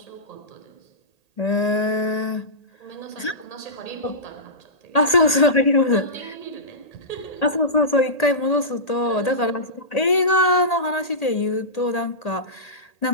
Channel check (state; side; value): late; right; 1.8 ms